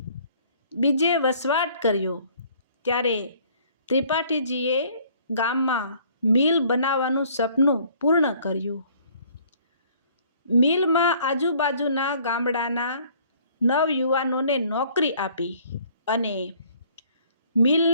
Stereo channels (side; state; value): both; inverted; correlation -0.58